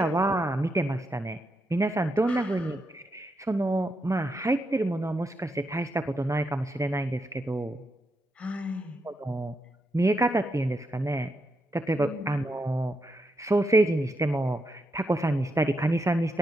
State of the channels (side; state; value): both; normal; correlation 0.83